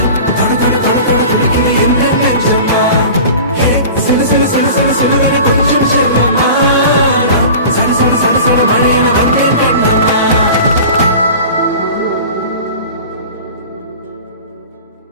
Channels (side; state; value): both; inverted; correlation -0.38